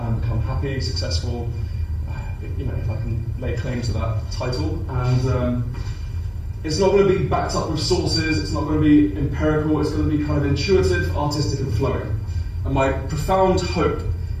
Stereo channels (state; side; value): identical; both; correlation 1.00